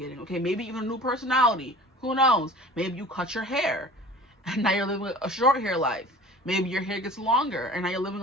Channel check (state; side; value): normal; both; correlation 0.42